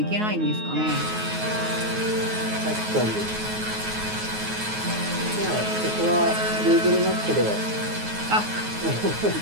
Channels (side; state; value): left; late; 9.4 ms